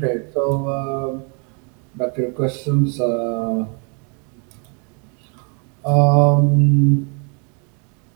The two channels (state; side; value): quieter; left; 37.2 dB